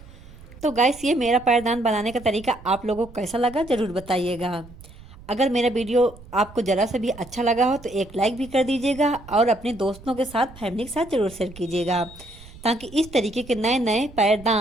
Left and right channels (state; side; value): noise; right; rumble, 19 dB below the sound